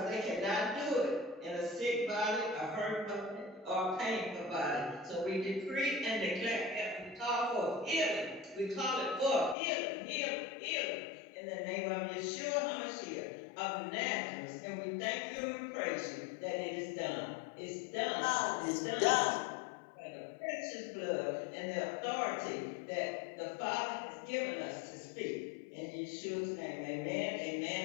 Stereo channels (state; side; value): drops out; right; at 9.6 s